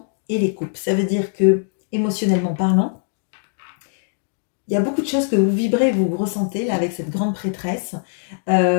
et les coupes. Ça veut dire que, émotionnellement parlant, il y a beaucoup de choses que vous vibrez, vous ressentez là avec cette grande prêtresse.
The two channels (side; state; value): right; silent; digital silence